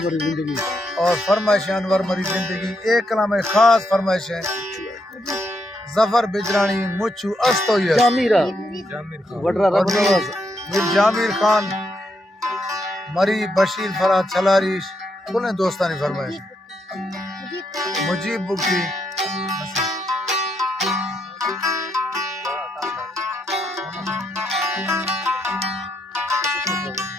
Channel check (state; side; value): normal; both; correlation 0.79